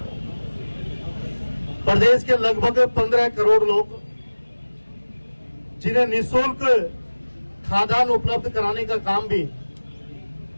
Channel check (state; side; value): inverted; both; correlation -1.00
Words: प्रदेश के लगभग 15 करोड़ लोग जिन्हें निःशुल्क खाद्यान्न उपलब्ध कराने का काम भी